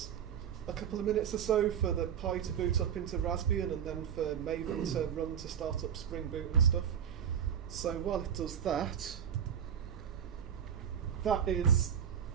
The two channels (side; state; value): left; quieter; 8.6 dB